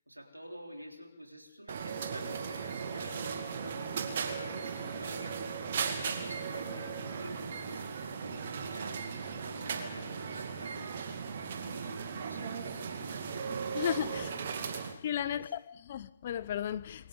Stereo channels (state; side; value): inverted; both; correlation -0.66